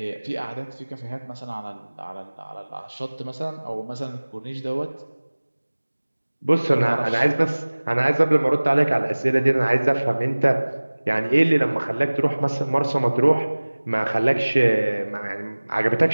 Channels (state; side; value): inverted; both; correlation -1.00